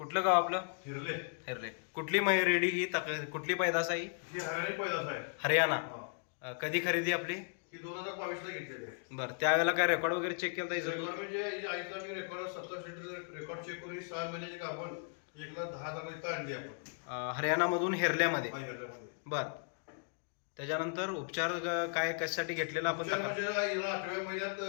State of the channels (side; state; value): right; silent; 54 dB below the other